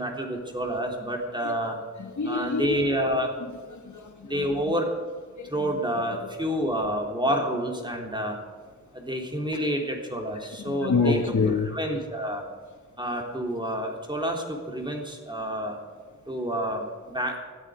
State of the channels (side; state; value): both; normal; correlation 0.33